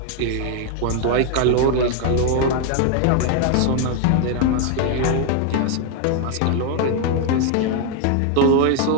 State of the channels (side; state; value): both; different; correlation 0.01